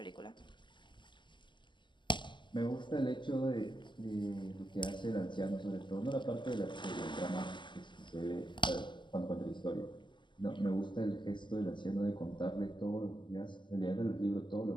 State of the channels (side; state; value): right; late; 0.22 ms